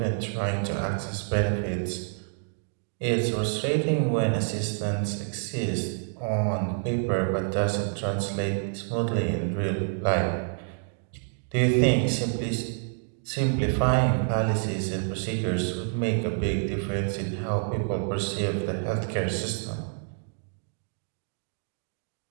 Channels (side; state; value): left; silent; 59 dB below the other